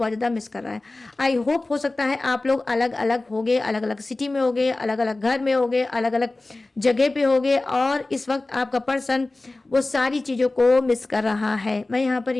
ज़्यादा मिस कर रहा है। आई होप हो सकता है आप लोग अलग अलग होगे, अलग अलग सिटी में होगे, अलग अलग घर में होगे, अलग अलग जगह पे होगे और इस वक्त आपका पर्सन वो सारी चीज़ों को मिस कर रहा है। मैं यहाँ पर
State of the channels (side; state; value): right; quieter; 3.0 dB